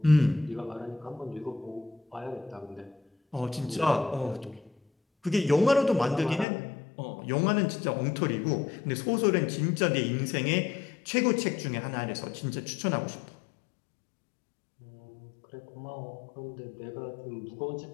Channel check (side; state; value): right; drops out; at 6.5 s